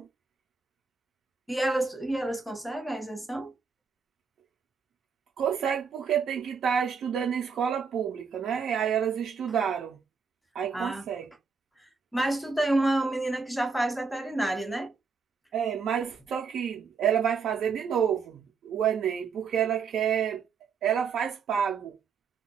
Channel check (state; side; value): quieter; left; 5.4 dB